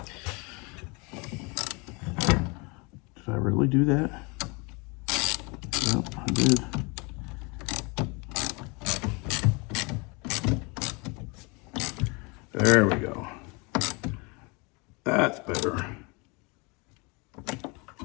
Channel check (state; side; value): quieter; right; 29.2 dB